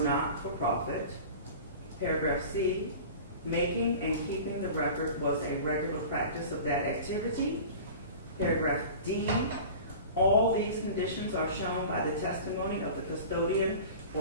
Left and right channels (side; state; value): both; inverted; correlation -0.38